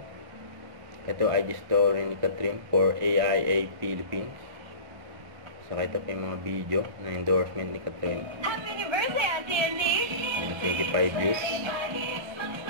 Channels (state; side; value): late; left; 1.4 ms